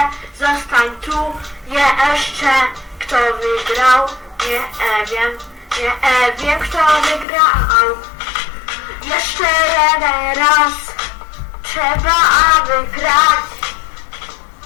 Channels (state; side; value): drops out; right; at 7.2 s